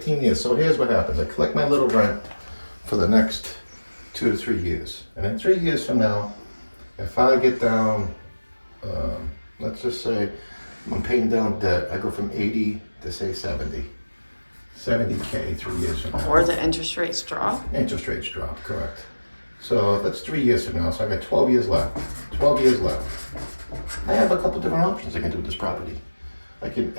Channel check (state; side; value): inverted; both; correlation -1.00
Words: years. So here's what happens. I collect my little rent for the next 2 to 3 years. And in 3 years from now, if I get down, let's just say I'm paying down debt, I go from 80 to say 70. 70K 3 years from now. Or the interest rates drop. Interest rates drop, correct. So that's 3 years from now, so I got 12 years left. 12 years left. I have a couple different options I can do with this property. I can